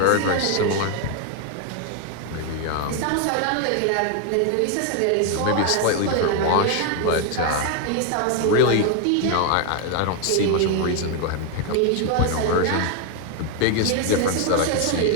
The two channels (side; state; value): both; different; correlation 0.01